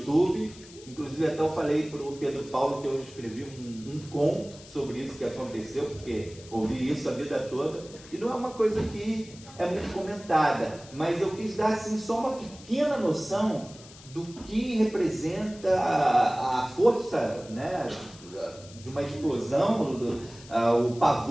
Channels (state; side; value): noise; left; hiss, 20 dB below the sound